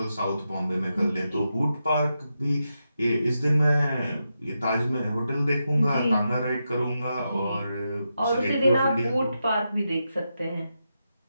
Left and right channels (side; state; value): both; inverted; correlation -0.87